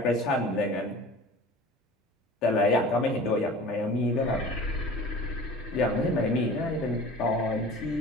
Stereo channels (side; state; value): both; normal; correlation 0.41